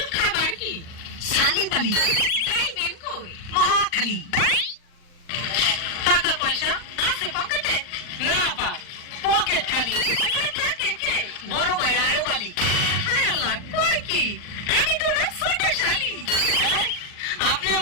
খাবার কি? সালিবালি। যাইবেন কই? মহাখালী। টাকা পয়সা আছে পকেটে? না পা, পকেট খালি। ওখানে থাকে কে? বড় ভাই আয়োবালি। হায় আল্লাহ, কই কি? আমি তো না ছোট শালি। আপনি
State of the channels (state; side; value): late; right; 39 ms